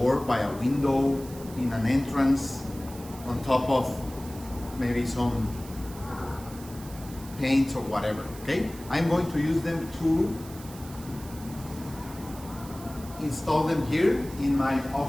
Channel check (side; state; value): right; noise; hiss, 18 dB below the sound